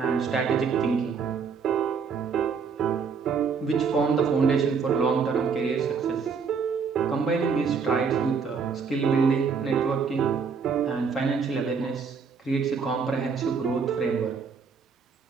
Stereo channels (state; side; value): quieter; left; 5.7 dB